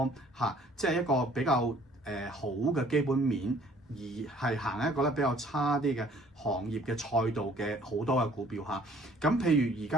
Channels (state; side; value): normal; both; correlation 0.57